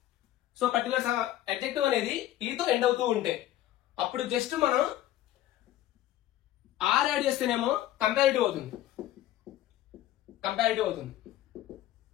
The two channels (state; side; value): quieter; right; 13.7 dB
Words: So particular adjective అనేది ఈతో ఎండ్ అవుతూ ఉంటే అప్పుడు జస్ట్ మనం ఆర్ యాడ్ చేస్తేనేమో కంపారిటివ్ అవుతుంది, కంపారిటివ్ అవుతుంది.